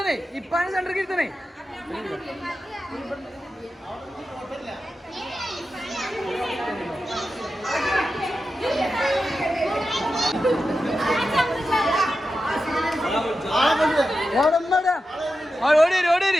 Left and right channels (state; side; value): normal; both; correlation 0.91